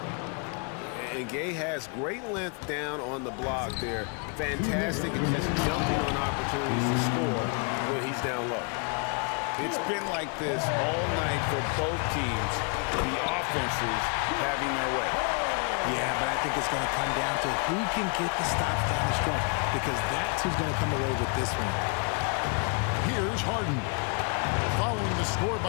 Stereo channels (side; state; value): right; quieter; 37.0 dB